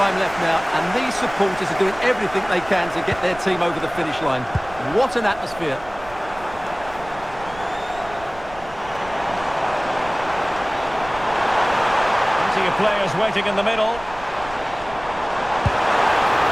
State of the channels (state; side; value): noise; right; rumble, 17 dB below the sound